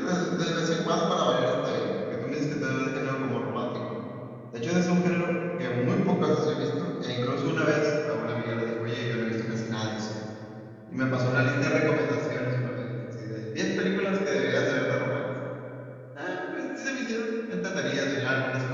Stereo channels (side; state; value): both; identical; correlation 1.00